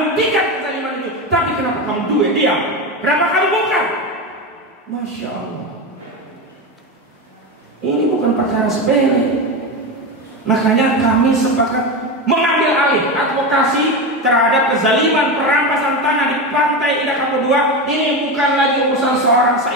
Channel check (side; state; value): both; normal; correlation 0.18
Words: kezaliman itu. Tapi kenapa kamu diam? Kenapa kamu bukan? Masya Allah. Ini bukan perkara sepele. Makanya kami sepakat mengambil alih advokasi terhadap kezaliman perampasan tanah di Pantai Indah Kapuk 2. Ini bukan lagi urusan seorang